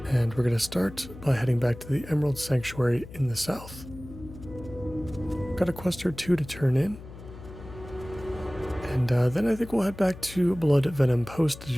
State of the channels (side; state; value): left; noise; hum, 15 dB below the sound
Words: and we're going to start by heading back to the Emerald Sanctuary in the south. Got a quest or two to turn in, and then I think we'll head back to Blood Venom Post